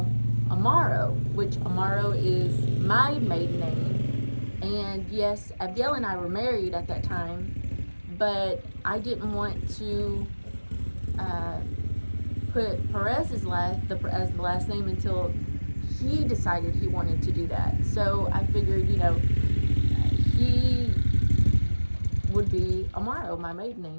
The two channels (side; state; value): both; inverted; correlation -1.00